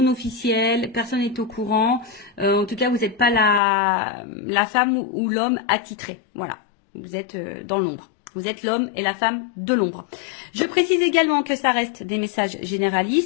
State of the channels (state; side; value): drops out; right; at 3.6 s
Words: officielle, personne n'est au courant. En tout cas, vous n'êtes pas la femme ou l'homme attitré. Voilà. Vous êtes dans l'ombre. Vous êtes l'homme et la femme de l'ombre. Je précise également que ça reste des messages